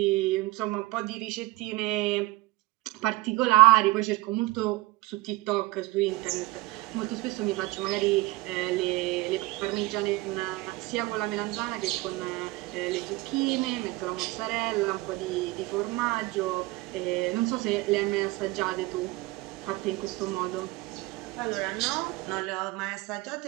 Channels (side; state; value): left; quieter; 19.5 dB